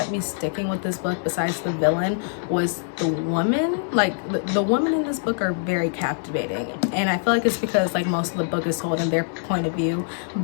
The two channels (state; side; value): silent; right; digital silence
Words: me sticking with this book besides the villain was the woman. Like the women in this book are very captivating, and I feel like it's because like most of the book is told in their point of view.